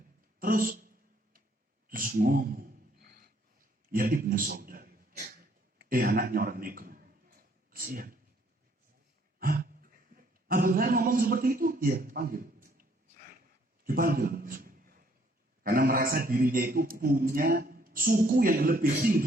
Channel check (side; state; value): both; normal; correlation 0.65